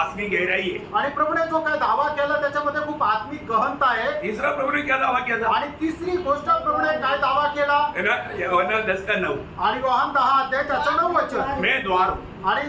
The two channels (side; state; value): both; identical; correlation 1.00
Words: गहराई है। आणि प्रभूने जो काय दावा केला त्याच्यामध्ये खूप आत्मिक गहनता आहे. तीसरा प्रभु ने क्या दावा किया था? आणि तिसरी गोष्ट प्रभूने काय दावा केला? है ना? यूहन्ना 10:9। आणि योहान 10 अध्याय त्याचं 9 वचन. मैं द्वार हूँ।